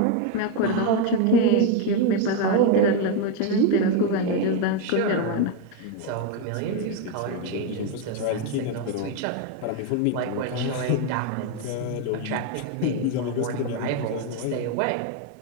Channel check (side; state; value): both; different; correlation 0.02